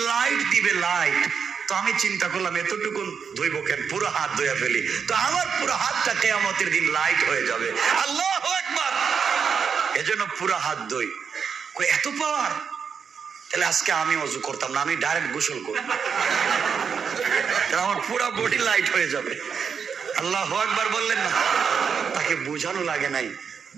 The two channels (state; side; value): quieter; left; 6.5 dB